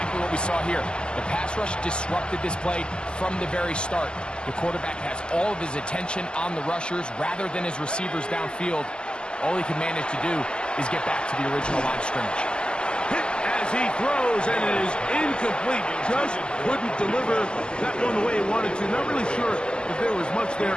what we saw here. The pass rush disrupted this play from the very start. The quarterback has all of his attention on the rushers rather than his receivers downfield. All he can manage to do is get back to the original line of scrimmage. Hit as he throws, and it is incomplete. Just couldn't deliver that one the way he wanted to. Not really sure if there was much there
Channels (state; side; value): late; right; 0.052 ms